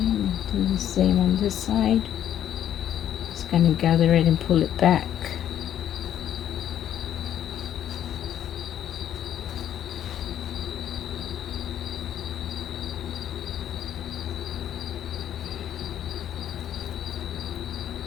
do the same on this side. Just gonna gather it and pull it back.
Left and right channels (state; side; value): quieter; right; 10.6 dB